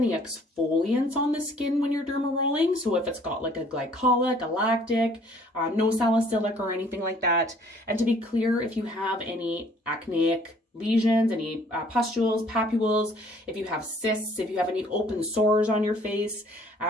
exfoliants on the skin when you're derma rolling. So if it's got like a glycolic, a lactic, no salicylic or anything like that. And to be clear, if you have any acneic lesions, any pustules, papules, if you have cysts, if you have any open sores on your face,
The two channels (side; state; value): both; normal; correlation 0.57